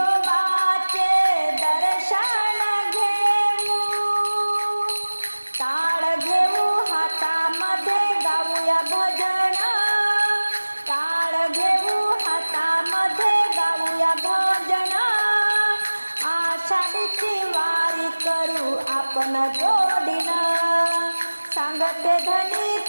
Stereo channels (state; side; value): inverted; both; correlation -1.00